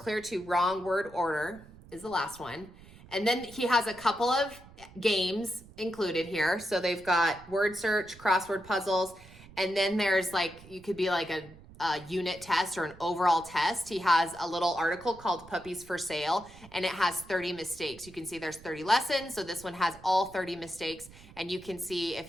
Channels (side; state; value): right; noise; rumble, 21 dB below the sound